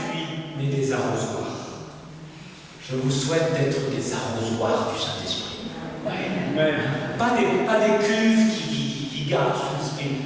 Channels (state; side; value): identical; both; correlation 1.00